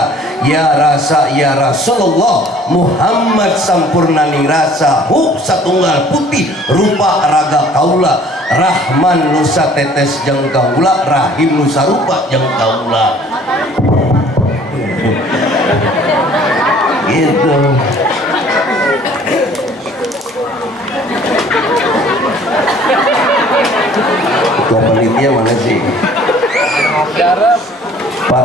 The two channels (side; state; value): both; normal; correlation 0.54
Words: ya rasa ya Rasulullah Muhammad sampurnaning rasa hu satunggal putih rupa raga kaula Rahman nusa tetes jeung kaula Rahim nusa rupa jeung kaula. Gitu. Ketua panitia mana sih?